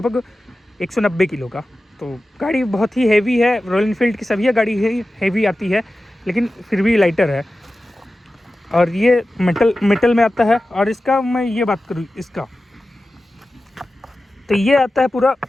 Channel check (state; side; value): normal; both; correlation 0.94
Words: 190 किलो का। तो गाड़ी बहुत ही हैवी है, रॉयल इनफील्ड की सभी गाड़ी हैवी आती है, लेकिन फिर भी लाइटर है। और ये मेटल में आता है। और इसका मैं ये बात करूँ इसका, तो ये आता है पूरा